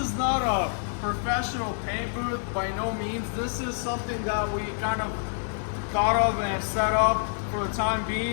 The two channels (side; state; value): right; silent; digital silence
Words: not a professional paint booth by no means. This is something that we kind of thought of and set up for the time